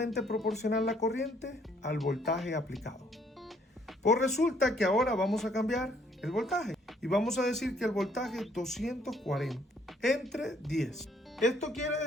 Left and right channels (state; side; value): normal; both; correlation 0.65